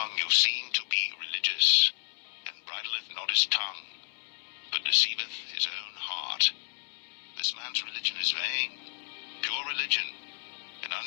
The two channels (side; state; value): right; silent; 57 dB below the other